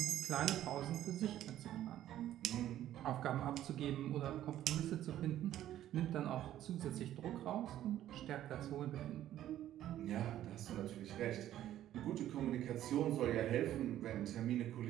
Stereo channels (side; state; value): left; quieter; 12.5 dB